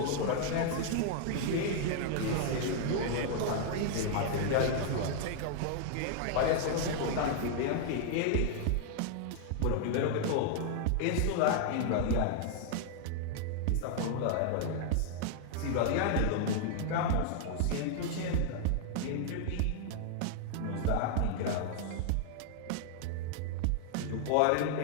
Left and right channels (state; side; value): different; both; correlation -0.01